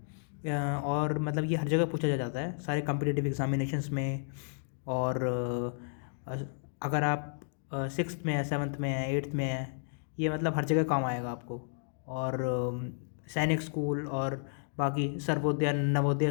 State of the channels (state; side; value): silent; right; digital silence